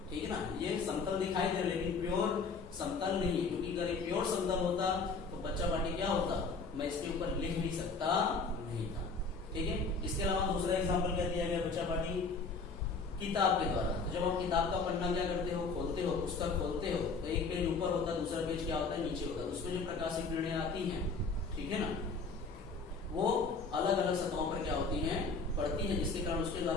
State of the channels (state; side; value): quieter; right; 4.4 dB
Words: ठीक है ना, ये समतल दिखाई दे रहा है, लेकिन प्योर समतल नहीं है, क्योंकि अगर प्योर समतल होता तो बच्चा पार्टी क्या होता, मैं इसके ऊपर लिख नहीं सकता नहीं था। ठीक है, इसके अलावा दूसरा एग्जाम्पल क्या दिया गया बच्चा पार्टी, किताब के द्वारा। तो जब आप किताब का पन्ना क्या करते हो, खोलते हो, पुस्तक खोलते हो, तो एक पेज ऊपर होता है, दूसरा पेज क्या होता है, नीचे होता है। तो उसमें जो प्रकाशित किरणें आती हैं, ठीक है ना, वो अलग अलग सतहों पर क्या होती हैं, पड़ती है, जिसके कारण उसके